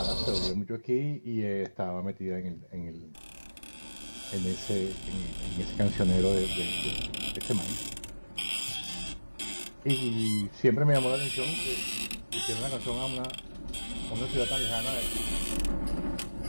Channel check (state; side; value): inverted; both; correlation -1.00